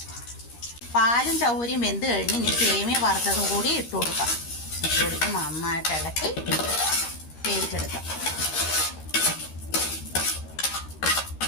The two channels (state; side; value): late; right; 13 ms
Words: പാലും ചവ്വരിയും വെന്ത് കഴിഞ്ഞ് ഇനി സേമിയ വറുത്തതും കൂടി ഇട്ട് കൊടുക്കാം. ഇട്ട് കൊടുത്ത് നന്നായിട്ട് ഇളക്കി വേവിച്ചെടുക്കാം.